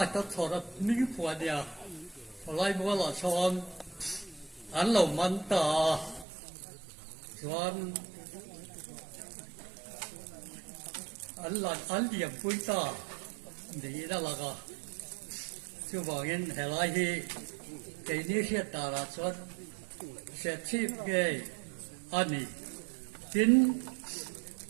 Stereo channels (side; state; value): left; drops out; at 6.2 s